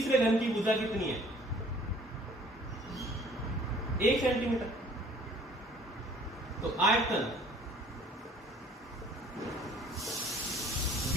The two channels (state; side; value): normal; both; correlation 0.54